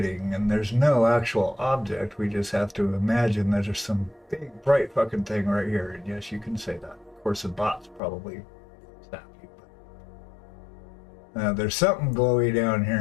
and there's no actual object. We just have to imagine that there's some big bright fucking thing right here. And yes, you can say that. Of course, the bot's probably snappy, but there's something glowy down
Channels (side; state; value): right; drops out; at 8.0 s